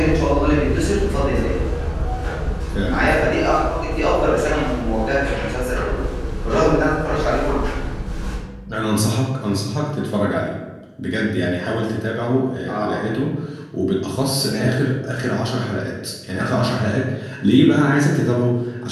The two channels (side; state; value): both; identical; correlation 1.00